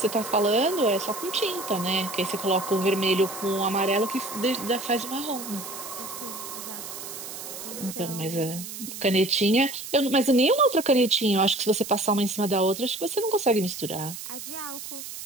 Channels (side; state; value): right; noise; hiss, 10 dB below the sound